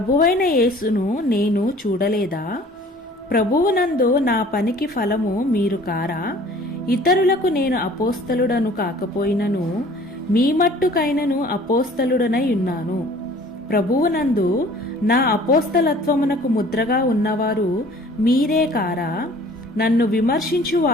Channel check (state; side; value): normal; both; correlation 0.50